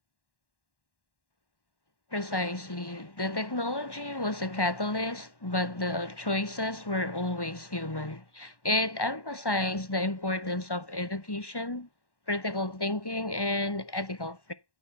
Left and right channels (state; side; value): late; right; 1.1 ms